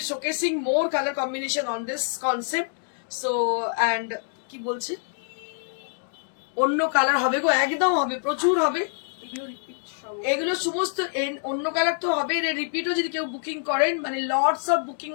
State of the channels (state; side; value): silent; right; digital silence